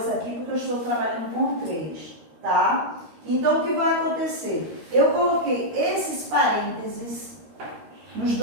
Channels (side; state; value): left; late; 13 ms